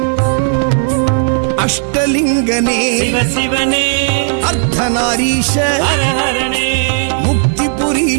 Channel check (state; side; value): silent; left; digital silence